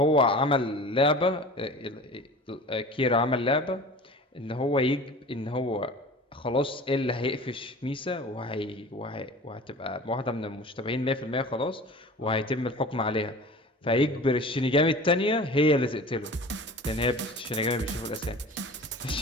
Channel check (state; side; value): normal; both; correlation 0.39